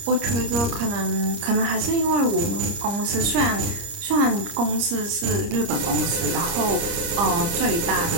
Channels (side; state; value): left; late; 30 ms